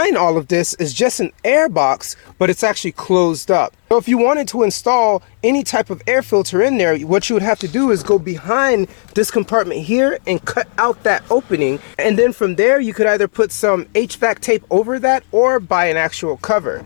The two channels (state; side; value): silent; right; digital silence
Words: all of this is just an air box, but it's actually closed up. So if you wanted to install any type of air filter in there, what you would have to do is go behind this compartment here and cut out that opening. And then from there, you could either put some HVAC tape over that or buy an actual cover.